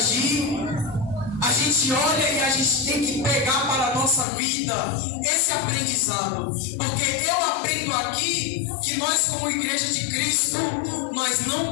a gente olha e a gente tem que pegar para a nossa vida esse aprendizado. Porque eu aprendo aqui que nós, como igreja de Cristo, nós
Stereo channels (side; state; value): right; drops out; at 4.2 s